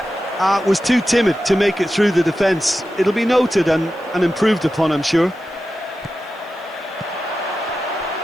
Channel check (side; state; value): right; noise; hiss, 30 dB below the sound